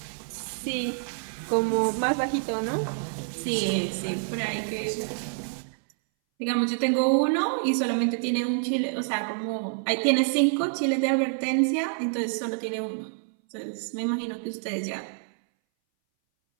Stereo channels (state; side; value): silent; left; 60 dB below the other